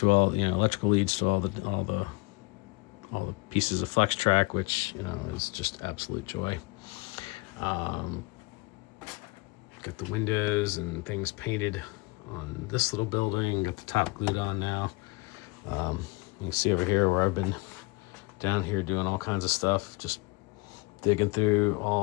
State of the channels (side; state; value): right; quieter; 25.5 dB